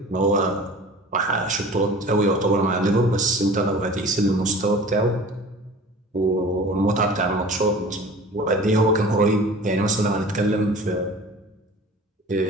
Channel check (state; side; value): normal; both; correlation 0.41